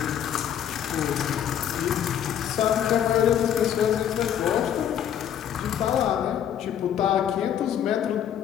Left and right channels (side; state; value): right; quieter; 9.6 dB